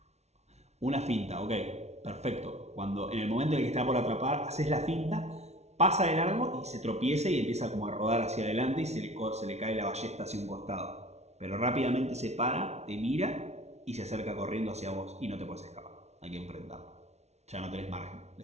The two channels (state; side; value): late; left; 0.32 ms